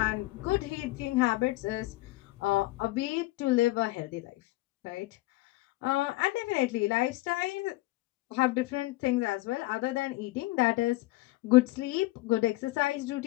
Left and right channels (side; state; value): right; quieter; 19.3 dB